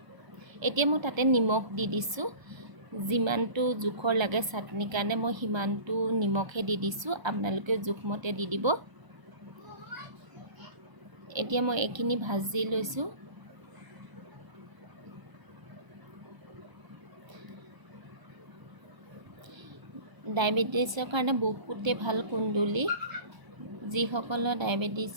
এতিয়া মই তাতে নিমখ দি দিছোঁ। যিমানটো জোখৰ লাগে চাটনিৰ কাৰণে মই সিমানটো নিমখে দি দিছোঁ। আপোনালোকে জোখমতে দি দিব। এতিয়া মই এইখিনি ভাজি লৈছোঁ। ডায়েবেটিছৰ কাৰণে বহুতে ভাল কুন্দুলি। যিসকলৰ ডায়েবেটিছ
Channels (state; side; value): late; left; 1.3 ms